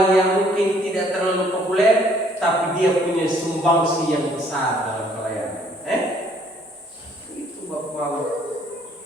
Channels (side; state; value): both; normal; correlation 0.62